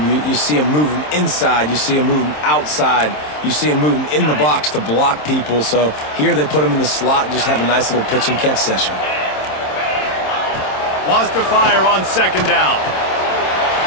You see him moving inside. You see him moving outside. You see him moving in the box to block people. So here they put him in the slot and just have a nice little pitch and catch session. Wants to fire on second down.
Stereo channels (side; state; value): right; late; 27 ms